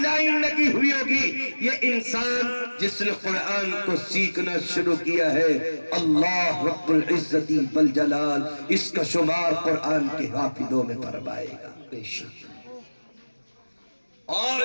لگی ہوئی ہوگی، یہ انسان جس نے قرآن کو سیکھنا شروع کیا ہے، اللہ رب العزت والجلال اس کا شمار قرآن کے حافظوں میں فرمائے گا بے شک۔ اور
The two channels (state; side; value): inverted; both; correlation -1.00